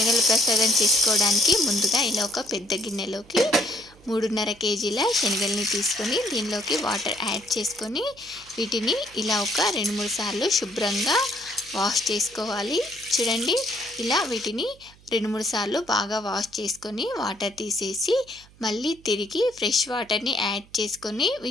ప్రసాదం చేసుకోవడానికి ముందుగా ఇలా ఒక పెద్ద గిన్నెలోకి 3.5 కేజీల శనగల్ని తీసుకొని దీనిలోకి వాటర్ యాడ్ చేసుకొని వీటిని ఇలా ఒక 2-3 సార్లు శుభ్రంగా వాష్ చేసుకోవాలి. చూడండి, ఇలా వీటిని 2-3 సార్లు బాగా వాష్ చేసుకొని వాటర్ తీసేసి మళ్ళీ తిరిగి ఫ్రెష్ వాటర్ని యాడ్ చేసుకొని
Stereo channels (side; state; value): right; noise; hum, 26 dB below the sound